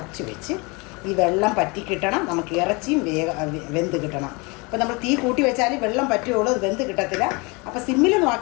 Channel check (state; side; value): quieter; right; 27.9 dB